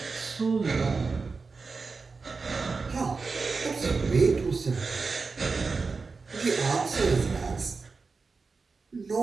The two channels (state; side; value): quieter; left; 4.4 dB